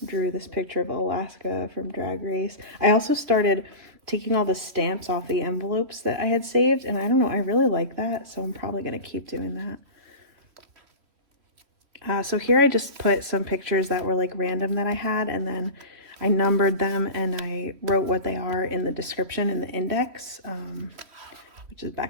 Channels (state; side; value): late; left; 3.1 ms